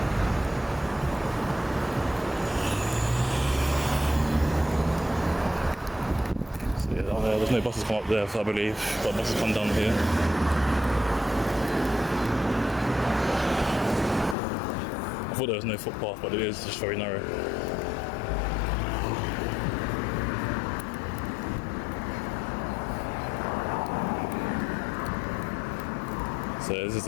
There's no buses come up there, so I believe, but buses come down here. I thought there was no footpath, but it is just very narrow. So this is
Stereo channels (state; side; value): drops out; right; at 14.4 s